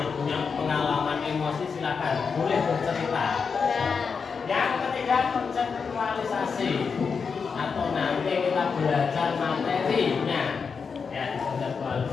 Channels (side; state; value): right; quieter; 5.6 dB